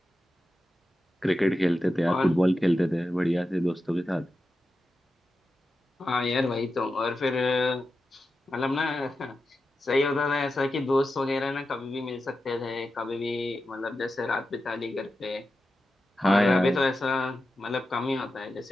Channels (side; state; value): both; normal; correlation 0.91